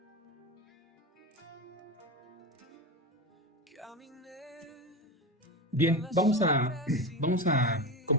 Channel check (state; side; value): normal; both; correlation 0.21